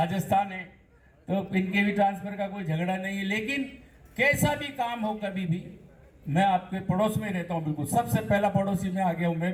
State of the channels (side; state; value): both; identical; correlation 1.00